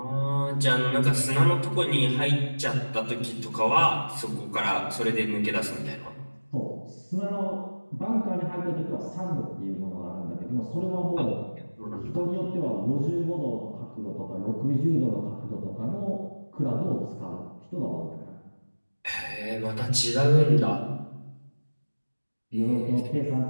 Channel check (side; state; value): both; inverted; correlation -1.00